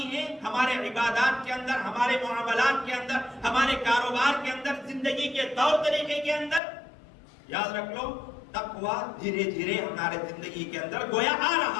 ہیں، ہمارے عبادات کے اندر، ہمارے معاملات کے اندر، ہمارے کاروبار کے اندر، زندگی کے طور طریقے کے اندر، یاد رکھ لو تقوی دھیرے دھیرے ہمارے زندگی کے اندر گویا آ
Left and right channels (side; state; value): right; drops out; at 6.6 s